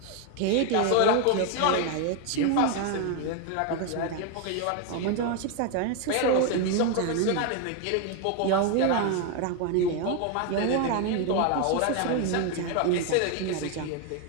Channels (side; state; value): both; different; correlation 0.01